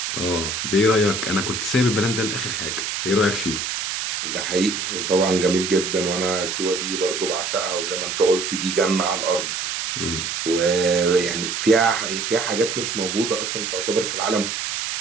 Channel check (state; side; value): noise; right; hiss, 3 dB below the sound